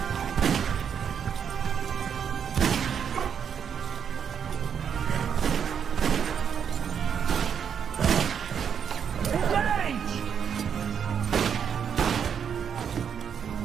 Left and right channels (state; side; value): quieter; left; 7.7 dB